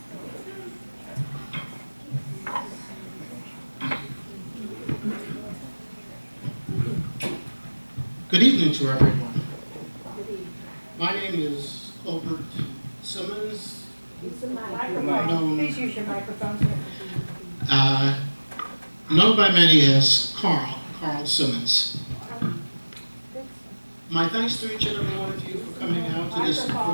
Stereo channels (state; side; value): inverted; both; correlation -1.00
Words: Good evening to everyone. My name is Colbert Simmons, known, Please use your microphone. known by many as Carl Simmons. My thanks to each and every one of you for coming out to this